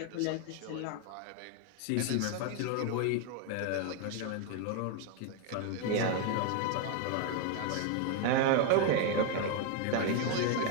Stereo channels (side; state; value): both; different; correlation 0.01